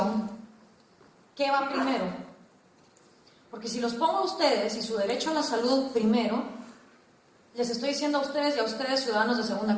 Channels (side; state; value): both; identical; correlation 1.00